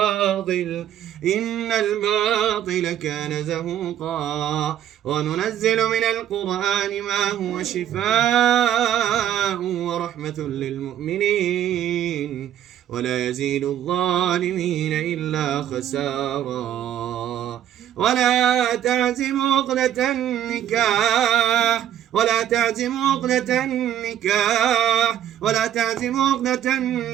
إن الباطل كان زهوقا. وننزل من القرآن ما هو شفاء ورحمة للمؤمنين ولا يزيد الظالمين إلا خسارا. ولا تعزموا عقدة النكاح ولا تعزموا عقدة النكاح ولا تعزموا عقدة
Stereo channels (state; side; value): quieter; left; 10.9 dB